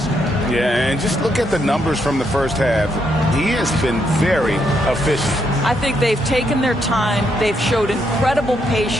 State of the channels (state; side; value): normal; both; correlation 0.77